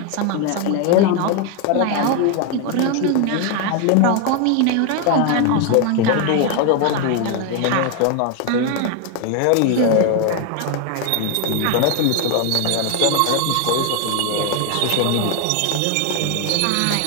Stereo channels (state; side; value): different; both; correlation 0.01